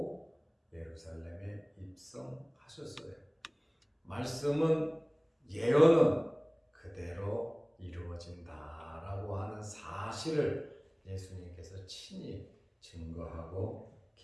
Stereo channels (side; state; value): both; identical; correlation 1.00